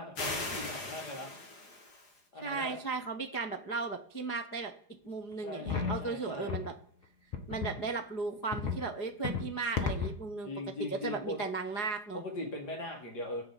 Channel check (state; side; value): late; right; 4.9 ms